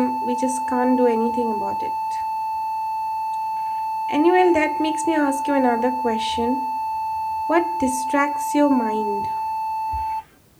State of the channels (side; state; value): both; identical; correlation 1.00